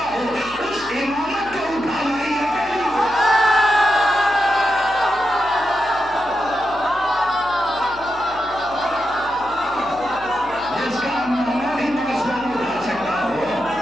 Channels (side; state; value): left; noise; hum, 20 dB below the sound